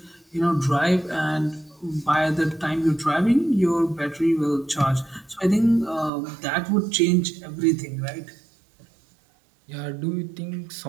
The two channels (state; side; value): drops out; left; at 6.1 s